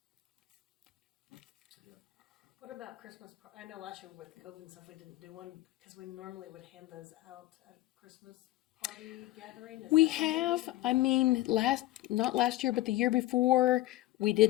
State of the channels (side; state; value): right; quieter; 16.4 dB